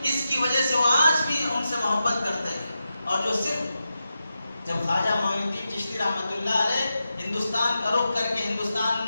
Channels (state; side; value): inverted; both; correlation -0.89